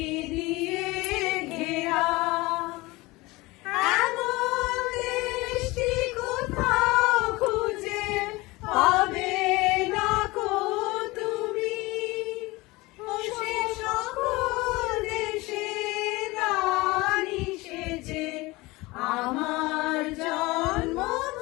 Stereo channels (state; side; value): quieter; right; 21.9 dB